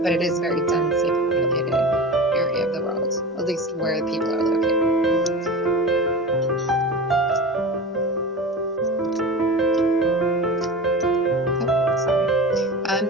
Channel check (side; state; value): both; normal; correlation 0.31